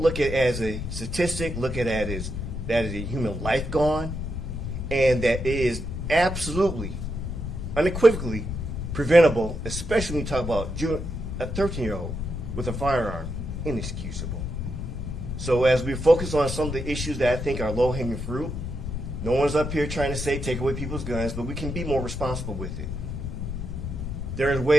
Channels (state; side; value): noise; left; rumble, 5 dB below the sound